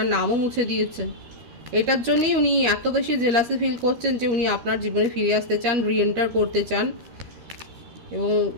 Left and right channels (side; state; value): left; late; 13 ms